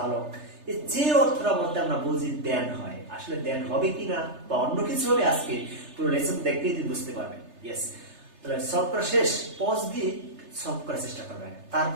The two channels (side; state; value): left; late; 3.3 ms